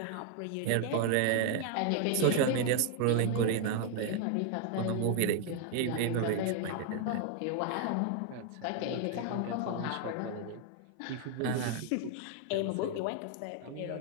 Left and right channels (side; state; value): both; different; correlation 0.00